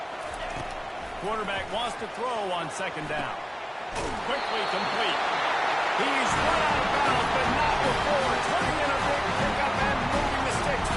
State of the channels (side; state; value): both; identical; correlation 1.00